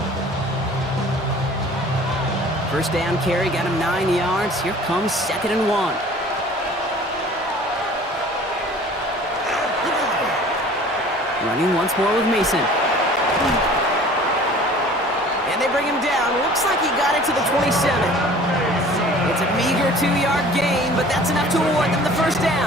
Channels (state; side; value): normal; both; correlation 0.47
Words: 1st down carry got him 9 yards. Here comes 2nd and 1. Running once more with Mason. And they bring him down. Looks like he got it to the 27. It's a meager 2-yard gain, but that's enough to award them the 1st